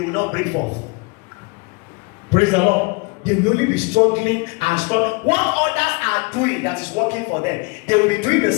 will not break forth. Praise the Lord. They will only be struggling and struggling. What others are doing that is working for them, they will be doing the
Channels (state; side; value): quieter; right; 28.7 dB